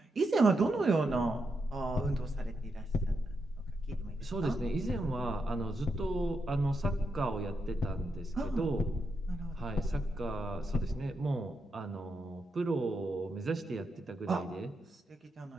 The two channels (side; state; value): both; normal; correlation 0.83